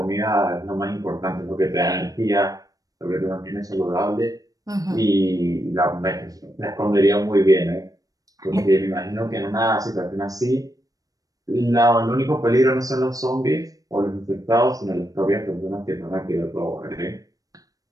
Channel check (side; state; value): left; late; 0.17 ms